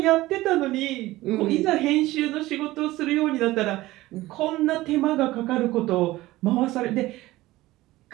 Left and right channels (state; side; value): quieter; left; 17.8 dB